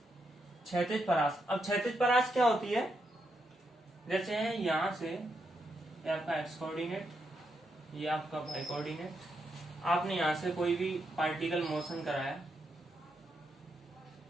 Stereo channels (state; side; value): normal; both; correlation 0.82